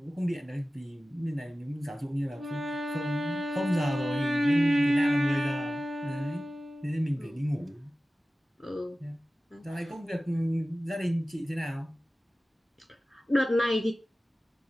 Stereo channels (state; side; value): normal; both; correlation 0.96